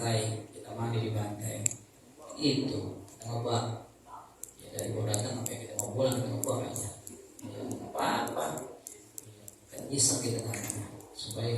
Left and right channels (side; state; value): both; identical; correlation 1.00